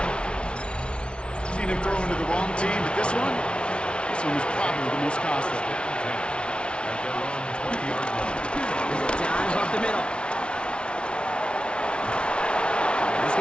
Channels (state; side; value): late; right; 0.058 ms